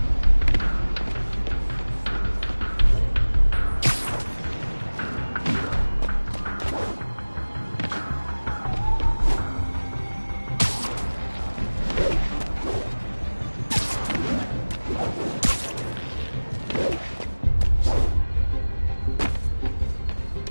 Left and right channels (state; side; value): inverted; both; correlation -1.00